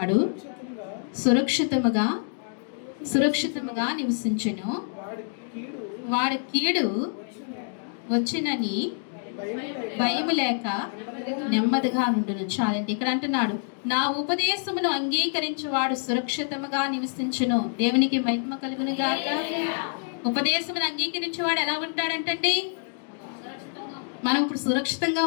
సురక్షితముగా నివసించును, వాడి కీడు వచ్చినని భయము లేక నెమ్మదిగా నుండును. చాలండి. ఇక్కడ అంటున్నాడు, నా ఉపదేశమును అంగీకరించువాడు సురక్షితముగా నివసించును. దేవునికి మహిమ కలుగును గాక. ఉపదేశమును అంగీకరించేవాడు ఎలా ఉంటాడంటండి? మనం ఇప్పుడు సురక్షితంగా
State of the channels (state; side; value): silent; right; 60 dB below the other